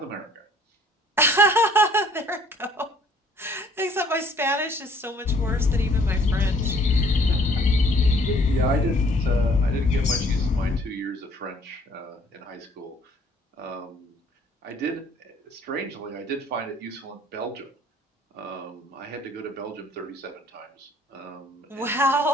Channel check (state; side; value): normal; both; correlation 0.59